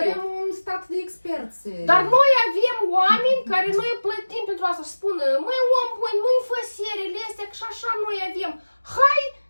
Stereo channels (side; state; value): both; inverted; correlation -1.00